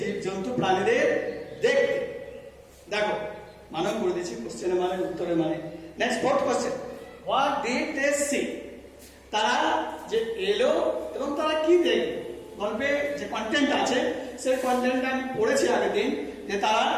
জন্তু প্রাণীদের দেখতে। দেখো মানব করে দিচ্ছি কোশ্চেনের মানে উত্তরের মানে। Next fourth question, what did they see? তারা যে এলো এবং তারা কি দেখলো? গল্পে যে কন্টেন্ট আছে সেই কন্টেন্টটা আমি পড়েছি আগের দিন, যে তারা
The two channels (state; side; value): identical; both; correlation 1.00